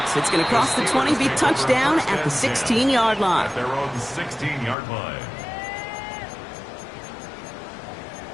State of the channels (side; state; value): right; drops out; at 4.8 s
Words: It's going to cross the 20, be touchdown at the 16-yard line. At their own 16-yard line.